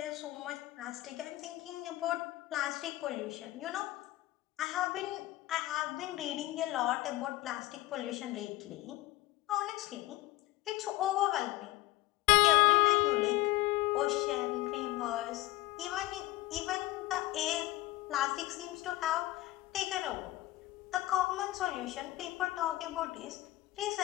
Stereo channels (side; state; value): right; quieter; 17.7 dB